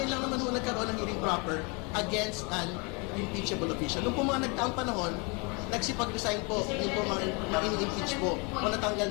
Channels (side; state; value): right; quieter; 31.5 dB